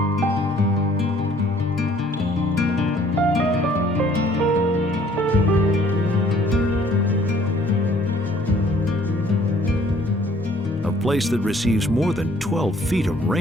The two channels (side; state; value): both; normal; correlation 0.59